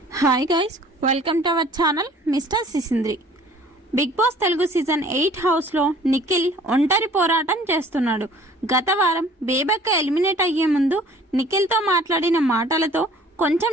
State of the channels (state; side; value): normal; both; correlation 0.52